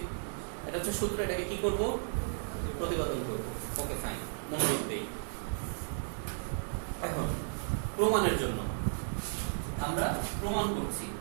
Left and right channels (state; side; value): silent; left; digital silence